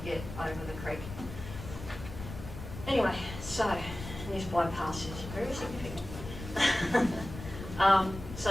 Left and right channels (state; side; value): noise; left; rumble, 11 dB below the sound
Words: get over the creek. Anyway, so this bypass is very significant.